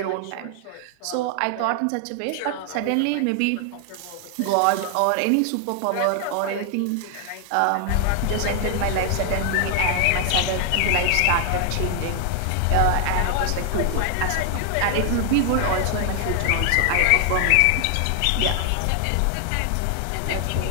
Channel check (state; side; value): different; both; correlation 0.00